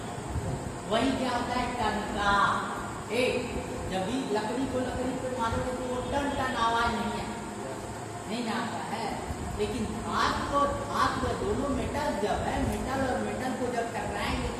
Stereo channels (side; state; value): both; identical; correlation 1.00